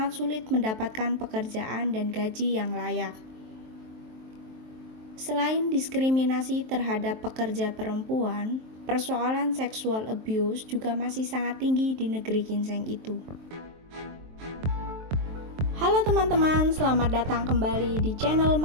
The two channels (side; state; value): left; late; 23 ms